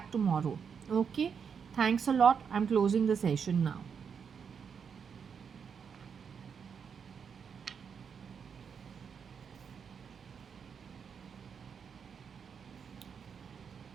tomorrow. Okay. Thanks a lot. I'm closing the session now.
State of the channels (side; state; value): left; quieter; 6.7 dB